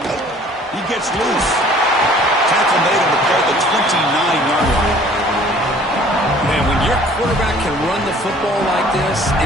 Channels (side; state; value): both; normal; correlation 0.53